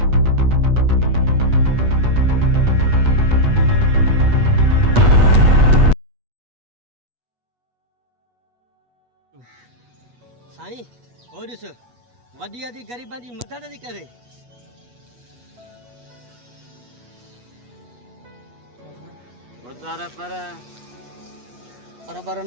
साईं हो ॾिस वॾी आदि ग़रीबां जी मदद थी करे पर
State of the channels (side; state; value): left; late; 8.3 ms